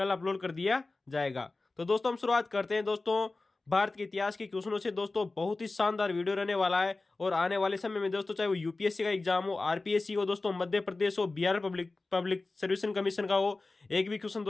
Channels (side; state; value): right; quieter; 3.4 dB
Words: अपलोड कर दिया जाएगा। तो दोस्तों हम शुरुआत करते हैं दोस्तों भारत के इतिहास के क्वेश्चनों से। दोस्तों बहुत ही शानदार वीडियो रहने वाला है और आने वाले समय में दोस्तों चाहे वो यूपीएससी का एग्जाम हो, आरपीएससी हो, दोस्तों मध्य प्रदेश हो, Bihar public public service commission का हो, एक भी क्वेश्चन